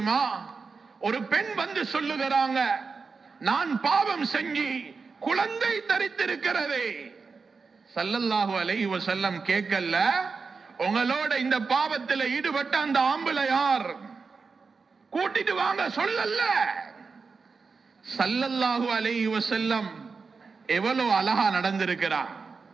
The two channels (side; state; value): left; quieter; 4.8 dB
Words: ஒரு பெண் வந்து சொல்லுகிறாங்க, நான் பாவம் செஞ்சு குழந்தை தரித்திருக்கிறதே. ஸல்லல்லாஹு அலைஹி வஸல்லம் கேட்கல, உங்களோட இந்த பாவத்தில் ஈடுபட்ட அந்த ஆம்பளை யார், கூட்டிட்டு வாங்க சொல்லல. ஸல்லல்லாஹு அலைஹி வஸல்லம் எவ்வளவு அழகா நடந்திருக்கிறார்.